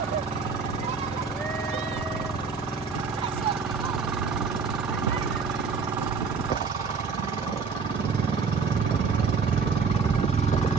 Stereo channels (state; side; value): quieter; left; 5.2 dB